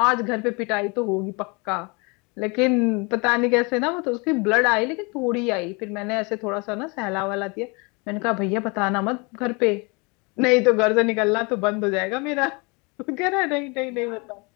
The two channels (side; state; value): right; quieter; 29.7 dB